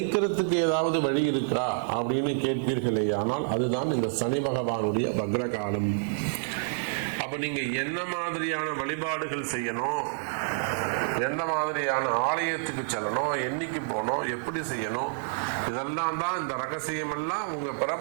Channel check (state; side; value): silent; left; 59 dB below the other